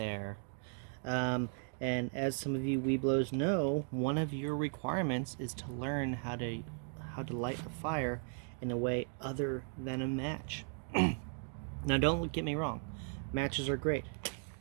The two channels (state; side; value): silent; left; 53 dB below the other